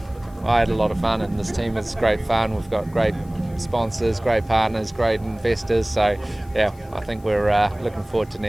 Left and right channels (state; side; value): noise; left; hiss, 28 dB below the sound